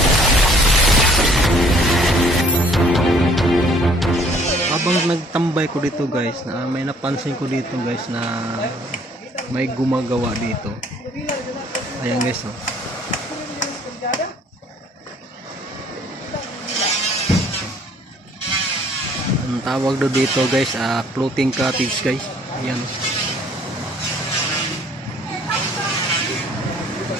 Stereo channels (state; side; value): normal; both; correlation 0.58